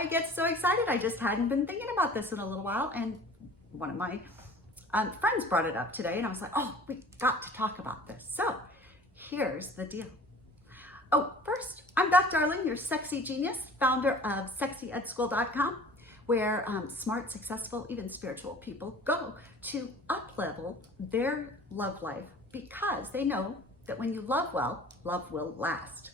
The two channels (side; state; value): both; normal; correlation 0.45